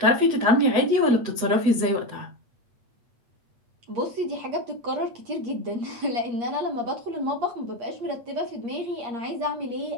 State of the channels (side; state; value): left; late; 8.5 ms